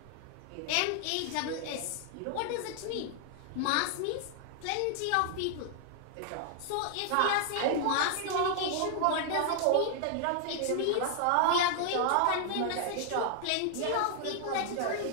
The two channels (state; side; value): different; both; correlation 0.00